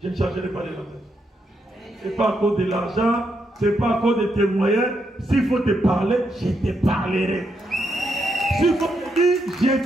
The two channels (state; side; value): normal; both; correlation 0.80